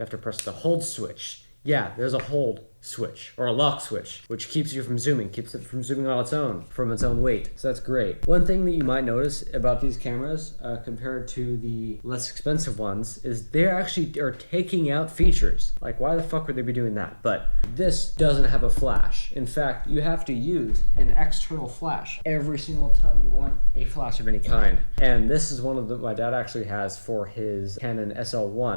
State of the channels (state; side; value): inverted; both; correlation -1.00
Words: to press the hold switch. Yeah, there's a hold switch or a lock switch, which keeps you from zooming, keeps it from zooming on its own, from its own weight. So that's great. One thing that you might notice about these cameras compared to the less expensive ones is they actually are taking out features. Like, why the fuck would they be doing that? But this doesn't have a flash. In fact, you have to use an external flash every single time you want a flash of any kind. And this is one of the my dad actually has for his Canon